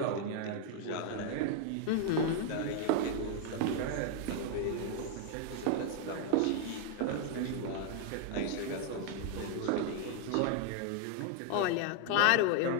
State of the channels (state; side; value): different; both; correlation 0.00